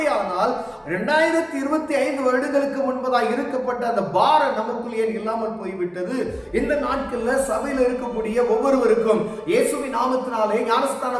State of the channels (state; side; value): identical; both; correlation 1.00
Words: 2025 வருடங்களுக்கு முன்பதாக இருக்கப்பட்ட அந்த பாரம் நமக்குள் ஏன் இல்லாமல் போய்விட்டது? இந்த நாட்கள்ல சபையில் இருக்கக்கூடிய ஒவ்வொருவருக்கும், இயேசுவின் நாமத்தினாலே